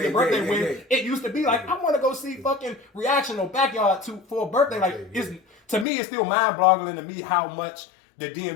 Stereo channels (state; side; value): drops out; right; at 5.9 s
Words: their birthday when it used to be like, I want to go see fucking Reaction on Backyard for a birthday. Like, to me, it's still mind-boggling to me how much the